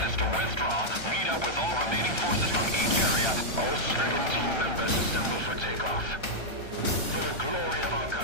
is to withdraw, meet up with all remaining forces from each area. All stricken team members assemble for takeoff. For the glory of our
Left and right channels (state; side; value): late; right; 1.3 ms